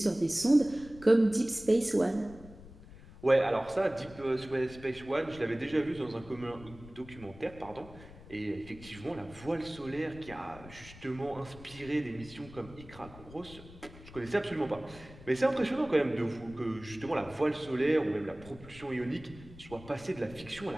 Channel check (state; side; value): noise; left; rumble, 18 dB below the sound